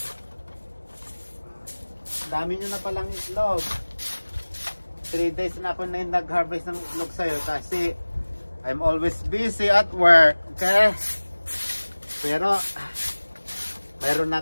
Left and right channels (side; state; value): both; inverted; correlation -1.00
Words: Dami nyo na palang itlog. 3 days na ako na nag-harvest ng itlog sa'yo kasi I'm always busy at work, okay? Pero mayroon na